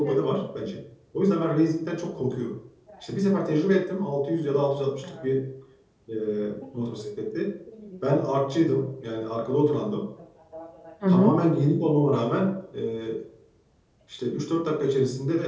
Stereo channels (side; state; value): both; identical; correlation 1.00